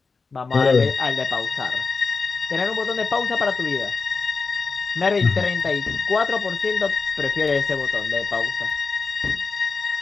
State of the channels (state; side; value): quieter; right; 4.5 dB